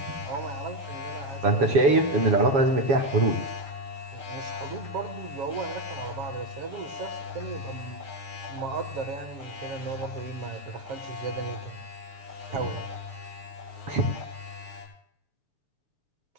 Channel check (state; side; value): late; left; 7.2 ms